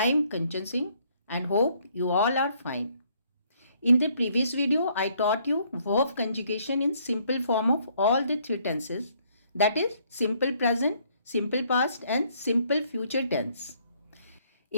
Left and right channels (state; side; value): inverted; both; correlation -0.66